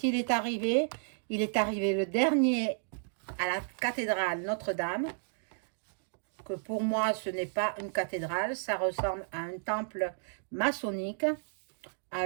il est arrivé le dernier à la cathédrale Notre-Dame, que pour moi ce n'est pas une cathédrale, ça ressemble à un temple maçonnique.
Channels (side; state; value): left; silent; digital silence